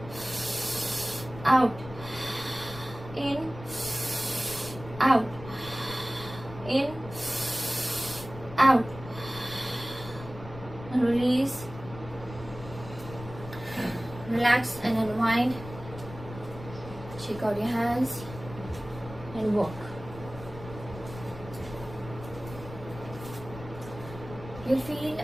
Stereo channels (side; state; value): left; noise; rumble, 14 dB below the sound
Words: out, in, out, in, out. Release, relax and unwind. Shake out your hands and walk. You'll feel